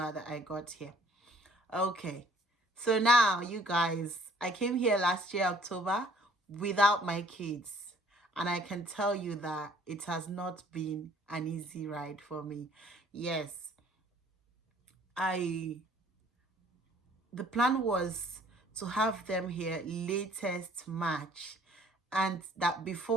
that I got here. Okay. So now, you guys, I came here last year, October, without my kids. And I can tell you that it has not been an easy ride for me. Yes, the plan was to have them here latest March. And that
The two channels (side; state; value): both; normal; correlation 0.57